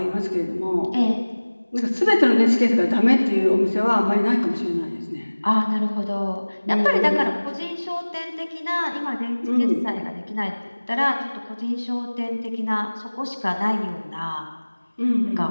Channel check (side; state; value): both; inverted; correlation -1.00